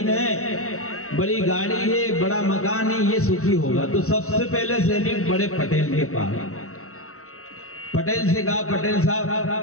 है, बड़ी गाड़ी है, बड़ा मकान है, ये सुखी होगा। तो सबसे पहले सैनिक बड़े पटेल के पास, पटेल से कहा पटेल साहब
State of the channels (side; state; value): right; late; 0.63 ms